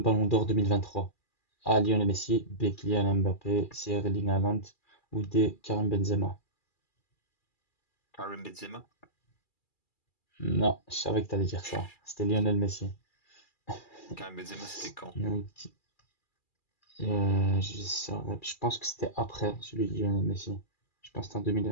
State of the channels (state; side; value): late; right; 2.4 ms